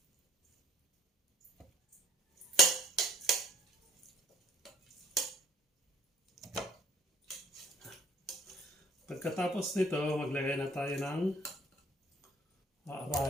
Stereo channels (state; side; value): normal; both; correlation 0.56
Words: Pagkatapos nito, maglagay na tayo ng